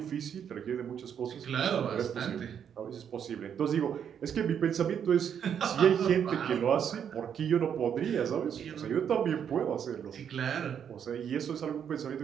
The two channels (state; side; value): quieter; left; 8.3 dB